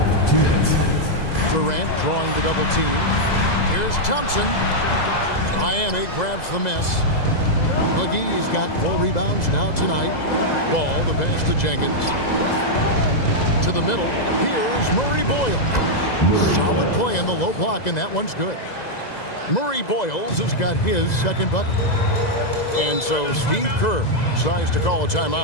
2 minutes. Durant drawing the double team. Here's Thompson. Miami grabs the miss. McGee's got 4 rebounds now tonight. Ball, the pass to Jenkins. To the middle. Here's Murray Boyle. Solid play in the low block, and that one's good. Murray Boyles has got his second bucket. And so Steve Kerr decides to call a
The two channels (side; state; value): right; late; 2.0 ms